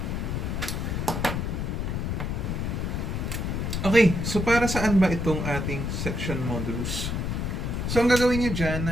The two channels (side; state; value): left; noise; rumble, 1 dB below the sound